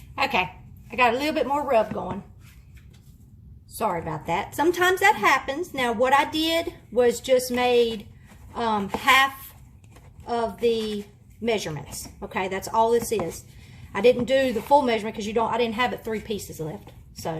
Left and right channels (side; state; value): both; identical; correlation 1.00